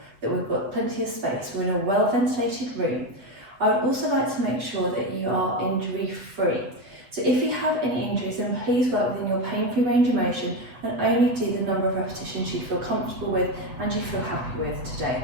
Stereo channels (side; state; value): left; late; 7.9 ms